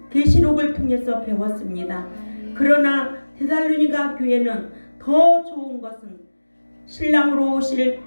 계시록을 통해서 배웠습니다. 그러나 데살로니가 교회는 더 좋은 것은 신랑으로 오실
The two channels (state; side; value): inverted; both; correlation -1.00